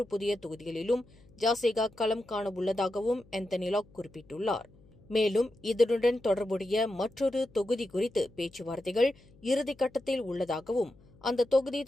புதிய தொகுதிகளிலும் ஜாசிகா களம் காண உள்ளதாகவும் ஆந்தனி லாக் குறிப்பிட்டுள்ளார். மேலும் இதனுடன் தொடர்புடைய மற்றொரு தொகுதி குறித்து பேச்சுவார்த்தைகள் இறுதிக்கட்டத்தில் உள்ளதாகவும், அந்த தொகுதி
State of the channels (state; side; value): noise; left; hum, 27 dB below the sound